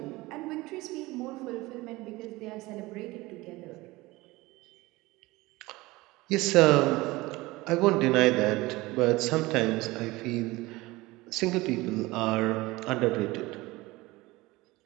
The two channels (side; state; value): left; quieter; 20.7 dB